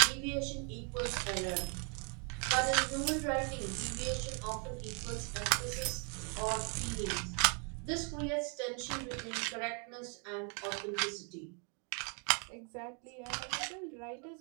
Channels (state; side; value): quieter; left; 38.0 dB